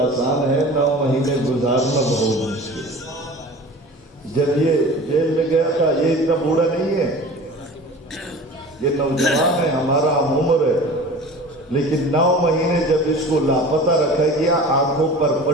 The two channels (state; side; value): normal; both; correlation 0.39